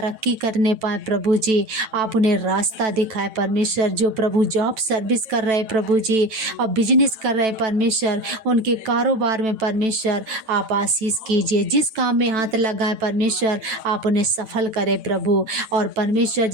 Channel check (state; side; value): late; left; 9.1 ms